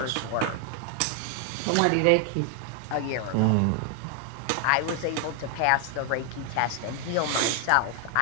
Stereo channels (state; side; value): different; both; correlation 0.00